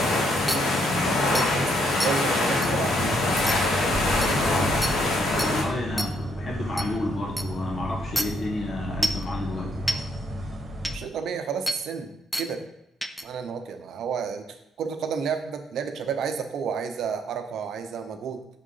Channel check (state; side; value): normal; both; correlation 0.72